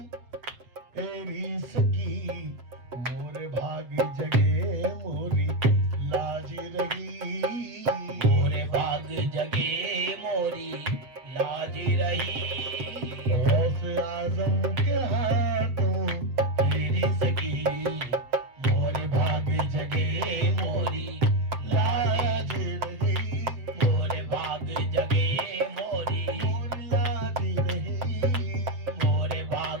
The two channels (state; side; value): late; left; 7.5 ms